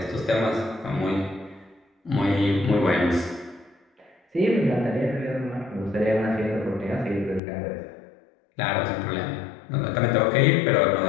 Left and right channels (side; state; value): right; drops out; at 7.4 s